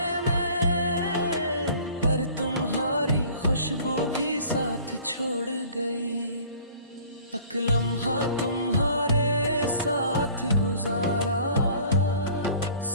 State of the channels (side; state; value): both; inverted; correlation -0.49